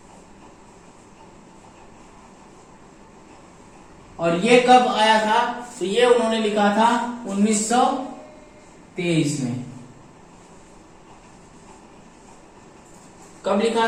और ये कब आया था तो ये उन्होंने लिखा था 1923 में। कब लिखा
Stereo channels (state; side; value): identical; both; correlation 1.00